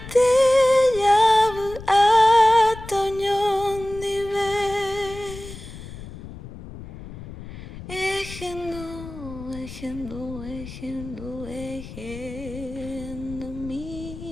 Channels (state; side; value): noise; left; rumble, 13 dB below the sound